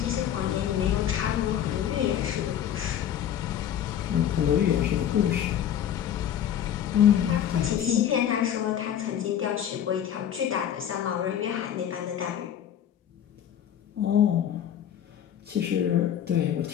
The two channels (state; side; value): quieter; right; 9.9 dB